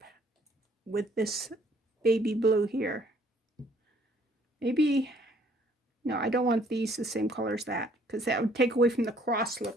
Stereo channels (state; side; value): normal; both; correlation 0.62